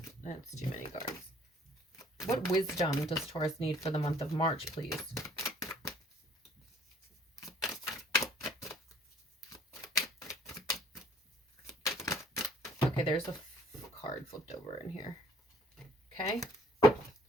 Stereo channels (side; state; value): both; normal; correlation 0.58